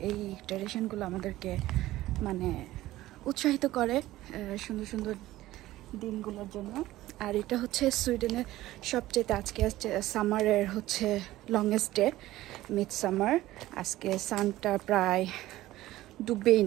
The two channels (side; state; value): left; quieter; 16.1 dB